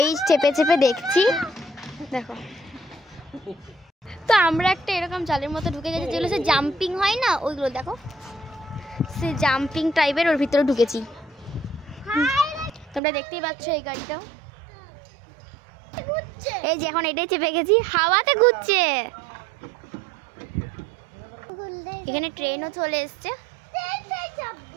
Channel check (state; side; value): drops out; left; at 13.0 s